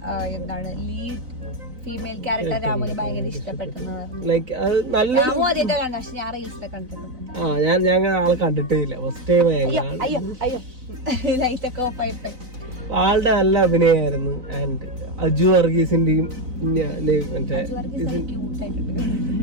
എന്താണ് ലീഡ് ഫീമെയിൽ ക്യാരക്ടർ രാമുന് ഭയങ്കര ഇഷ്ടപ്പെട്ടെന്ന് ലൈക്ക് അത് നല്ലൊരു പക്ഷെ ഞാൻ റീൽസിലൊക്കെ കണ്ടിട്ടുണ്ട്. ഞാൻ ആളെ കണ്ടിട്ടേ ഇല്ല. ഫസ്റ്റ് ടൈം ലൈറ്റൊക്കെ ഓഫ് ആയിട്ട് ആളുടെ നല്ല അഭിനയമായിരുന്നു. ആൻഡ് അജു വർഗീസിന്റെയും മറ്റേ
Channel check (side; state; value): left; late; 4.0 ms